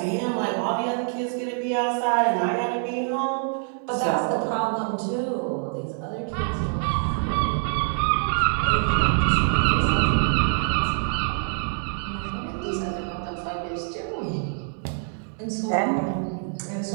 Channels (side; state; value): left; silent; 56 dB below the other